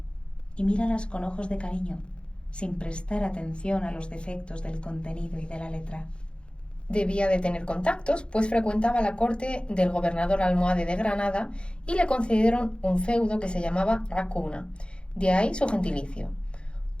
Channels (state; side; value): late; right; 0.055 ms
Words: y míralas con ojos de cariño, sin prestar atención a los defectos del contenido y de la letra. Debía de tener contactos, pues frecuentaba la corte del gobernador almohade de Granada y le concedieron un feudo que se llamaba Racuna, de ahí su gentilicio.